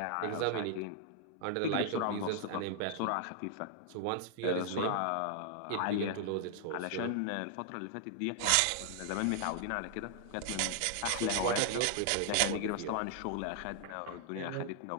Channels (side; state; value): both; different; correlation 0.00